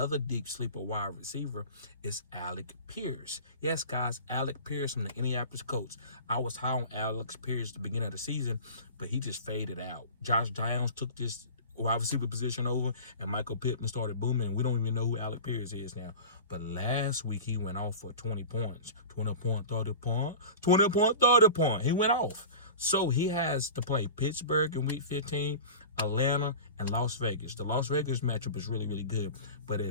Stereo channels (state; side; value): inverted; both; correlation -0.35